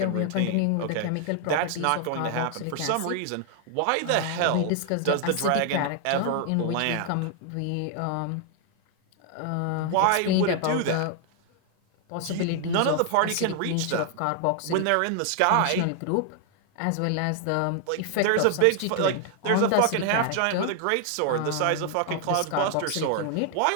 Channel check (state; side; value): different; both; correlation 0.00